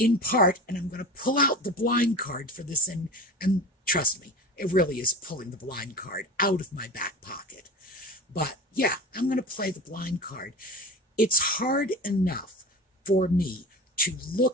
part, and I'm going to pull out the blind card for this, and trust me, it really is pulling the blind card out of my back pocket. But yeah, I'm going to play the blind card. It's hard enough for me to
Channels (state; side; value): normal; both; correlation 0.32